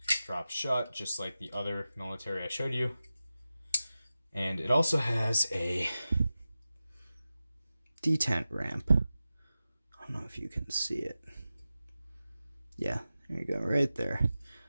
Drops shut, just like the other military I showed you. And it also has a detent ramp. I don't know if you can see it. Yeah, there you go, right there.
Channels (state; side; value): inverted; both; correlation -0.94